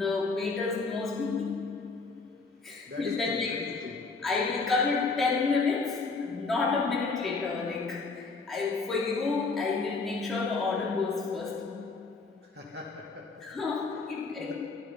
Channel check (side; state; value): right; quieter; 4.1 dB